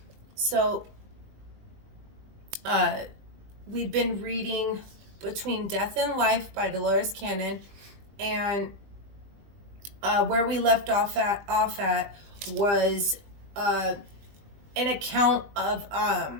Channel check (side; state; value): left; late; 20 ms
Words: So, we've been reading Between Death and Life by Dolores Cannon, and where we left off at was an account of